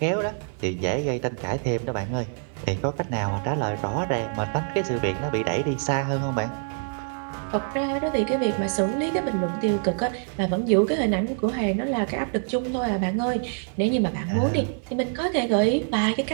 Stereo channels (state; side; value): silent; left; 60 dB below the other